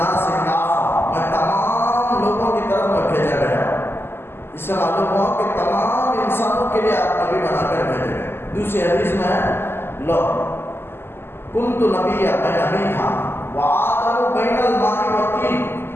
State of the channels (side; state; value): right; late; 0.11 ms